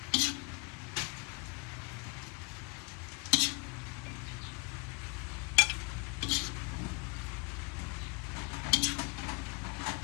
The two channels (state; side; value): quieter; right; 30.5 dB